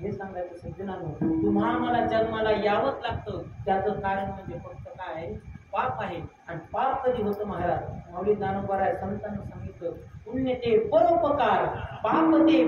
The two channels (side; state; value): both; identical; correlation 1.00